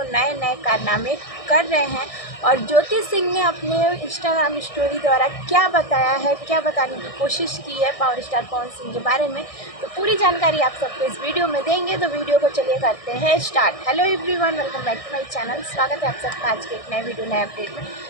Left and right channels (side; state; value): right; late; 1.6 ms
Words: नए नए कारनामे कर रहे हैं और ज्योति सिंह ने अपने इंस्टाग्राम स्टोरी द्वारा क्या बताया है, क्या बताने की कोशिश की है पावर स्टार पवन सिंह के बारे में, तो पूरी जानकारी आप सबको इस वीडियो में देंगे। तो वीडियो को चलिए करते हैं start. Hello everyone, welcome back to my channel. स्वागत है आप सबका आज के एक नए वीडियो नए अपडेट में।